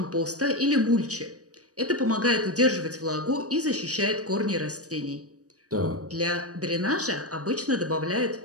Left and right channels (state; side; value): late; left; 0.66 ms